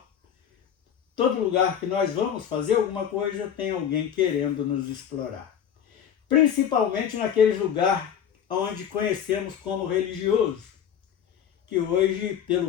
todo lugar que nós vamos fazer alguma coisa, tem alguém querendo nos explorar. Principalmente naqueles lugares onde conhecemos como religioso, que hoje,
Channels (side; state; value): right; quieter; 8.7 dB